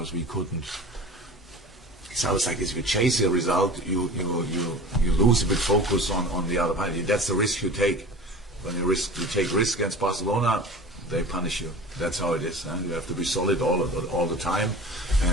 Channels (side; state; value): both; normal; correlation 0.36